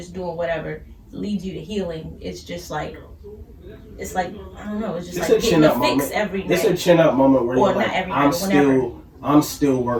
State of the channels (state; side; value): identical; both; correlation 1.00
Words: doing whatever leads you to healing. It's just like, I don't know. It's just like getting a fix every day. It's a chin up moment where you're like, I'm still